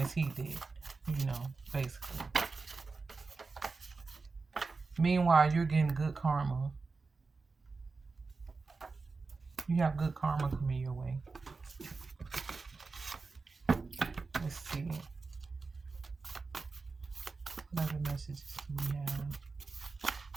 he did, basically. Meanwhile, you're getting good karma. You have good karma coming your way. Let's see. What other messages do we have?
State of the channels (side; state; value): left; quieter; 4.2 dB